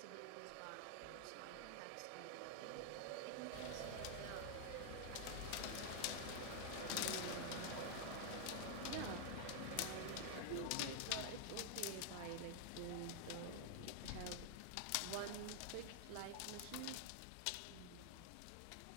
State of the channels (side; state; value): both; different; correlation 0.00